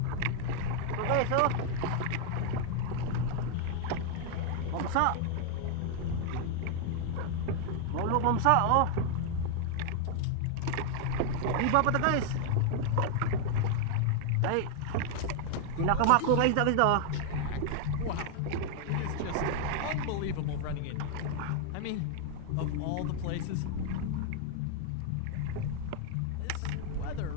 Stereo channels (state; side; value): different; both; correlation 0.00